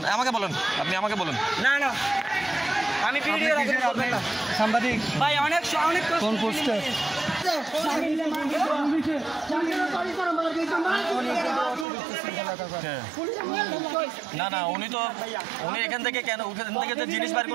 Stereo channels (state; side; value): drops out; left; at 11.9 s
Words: আপনি আমাকে বলেন। না না আমি ভিডিও সাংবাদিক ভাই অনেক কোন পোস্টে না উনি এখান থেকে যে জিনিস বাইর